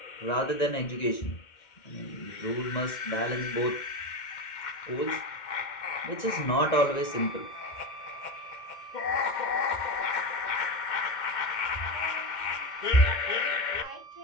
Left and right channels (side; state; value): right; late; 2.1 ms